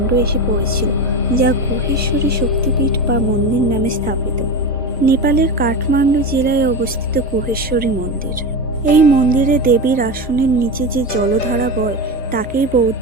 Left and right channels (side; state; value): both; normal; correlation 0.22